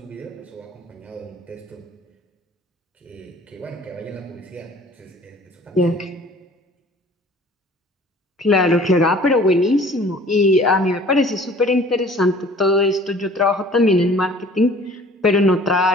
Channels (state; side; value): normal; both; correlation 0.50